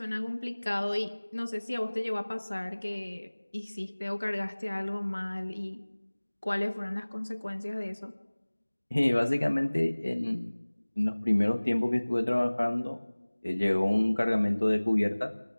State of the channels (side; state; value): both; inverted; correlation -1.00